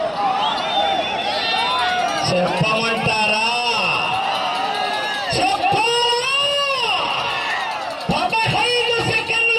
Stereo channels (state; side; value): identical; both; correlation 1.00